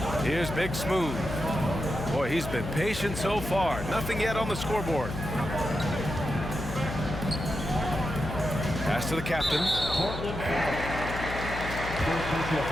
Here's Big Smooth. Boy, he's been patient so far. Nothing yet on the scoreboard. Pass to the captain. Portland foul. First personal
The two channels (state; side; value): noise; left; hum, 7 dB below the sound